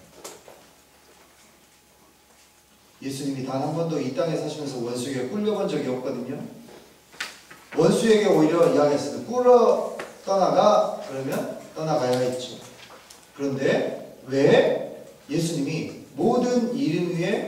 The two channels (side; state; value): both; identical; correlation 1.00